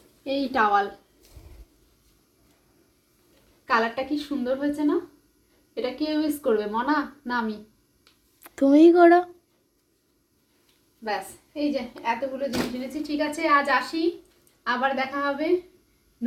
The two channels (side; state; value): both; identical; correlation 1.00